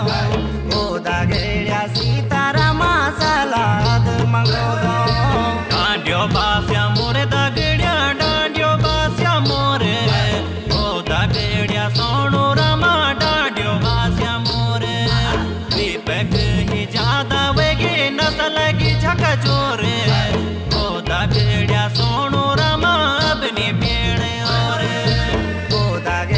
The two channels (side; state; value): both; identical; correlation 1.00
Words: ओ दागेड्या सीतारामा सलाद मंगोदो डांडियो बास्या मोरे दागेड्या डांडियो बास्या मोरे ओ दागेड्या सोणू रमा डांडियो बास्या मोरे दीपक ही ज्यादा वेगी नसल की झक जोरे ओ दागेड्या सोणू रमा अपनी पेड़ और ओ